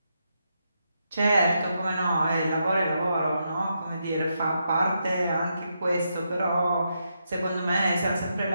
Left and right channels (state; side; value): inverted; both; correlation -0.82